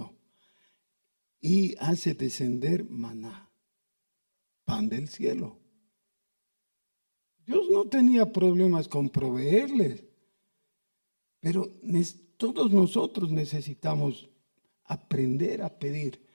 y hace descender maná, pan del cielo. Dios no tenía problemas con proveerles, pero todos nosotros necesitamos aprender a pedir.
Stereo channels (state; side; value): inverted; both; correlation -1.00